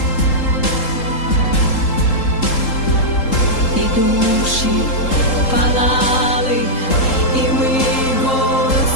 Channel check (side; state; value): right; late; 3.7 ms